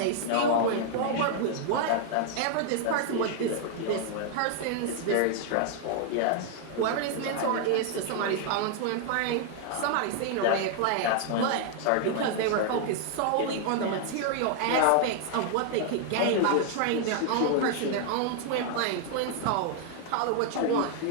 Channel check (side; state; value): both; different; correlation 0.00